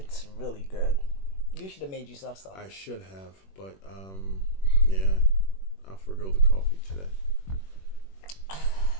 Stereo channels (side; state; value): right; late; 21 ms